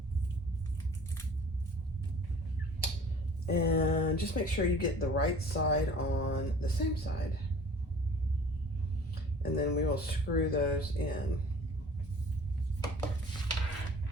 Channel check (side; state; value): both; normal; correlation 0.47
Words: And just make sure you get the right side on the same side. And then we will screw those in.